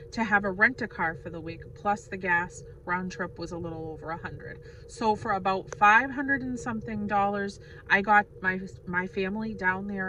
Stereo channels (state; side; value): identical; both; correlation 1.00